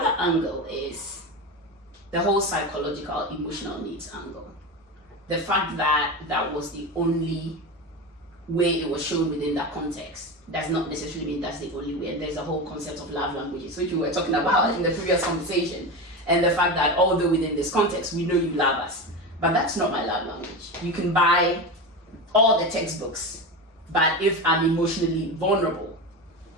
angle is the whole psychological, emotional needs angle. The fact that that was the only way it was shown within that context does not necessarily mean that's the only way. And there's a whole concept of love languages, which we were talking about in the previous conversation. And the fact that although within this context, we know you love us, but that's not my love language. You can buy all the textbooks, but if I'm emotionally vulnerable,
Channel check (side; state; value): both; normal; correlation 0.22